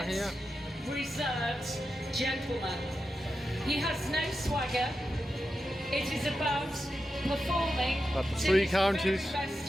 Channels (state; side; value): normal; both; correlation 0.89